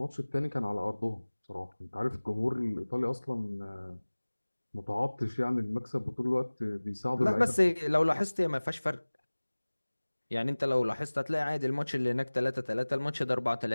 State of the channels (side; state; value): both; inverted; correlation -1.00